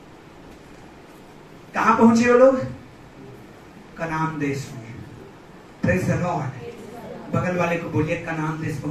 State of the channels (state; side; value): identical; both; correlation 1.00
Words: कहां पहुंचे वो लोग? कनान देश में। Praise the Lord. बगल वाले को बोलिए कनान देश